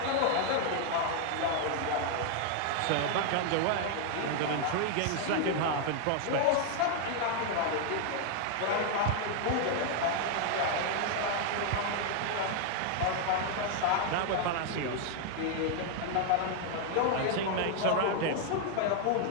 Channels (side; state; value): both; different; correlation 0.00